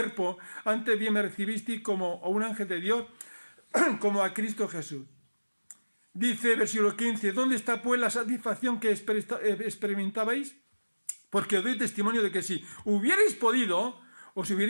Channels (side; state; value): both; inverted; correlation -1.00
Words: antes bien me recibisteis como a un ángel de Dios, como a Cristo Jesús. Dice versículo 15, ¿dónde está pues la satisfacción que experimentabais? Porque os doy testimonio de que si hubierais podido, os